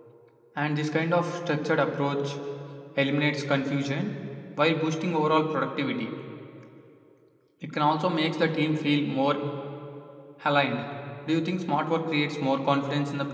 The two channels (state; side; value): identical; both; correlation 1.00